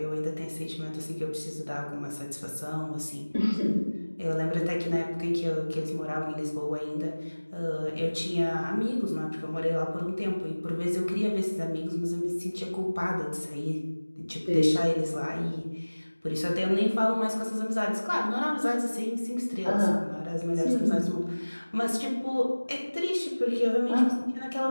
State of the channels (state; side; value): inverted; both; correlation -1.00